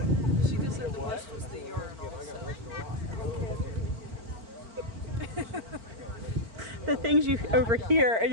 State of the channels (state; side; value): late; left; 4.4 ms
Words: She just said the bush was the urinal. The things you overhear, and